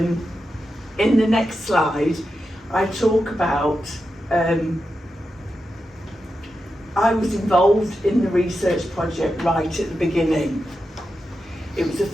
in the next slide, I talk about, I was involved in the research project right at the beginning. It was a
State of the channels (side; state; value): both; normal; correlation 0.89